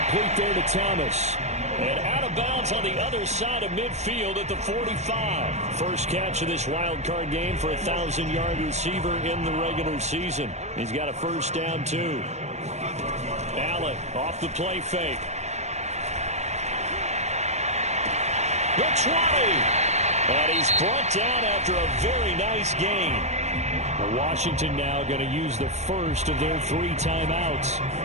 there to Thomas. And out of bounds on the other side of midfield at the 45. First catch of this wild card game for a 1,000-yard receiver in the regular season. He's got a first down, too. Allen off the play fake. The 20. And he's brought down after a very nice gain. Washington now going to use the first of their 3 timeouts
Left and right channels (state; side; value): late; left; 0.32 ms